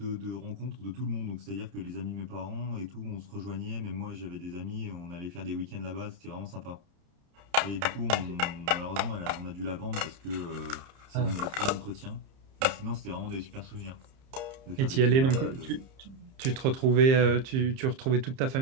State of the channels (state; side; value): late; left; 30 ms